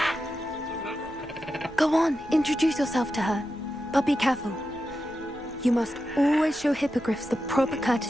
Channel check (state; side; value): normal; both; correlation 0.89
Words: Go on, introduce yourself to her. But be careful. You must always show hippogriffs the proper